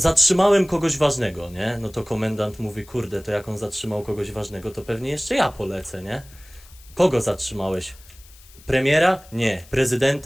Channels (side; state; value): left; noise; hiss, 24 dB below the sound